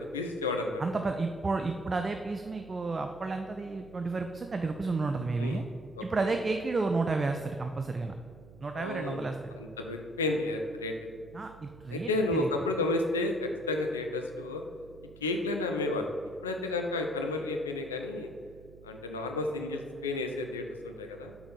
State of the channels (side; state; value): right; noise; hum, 20 dB below the sound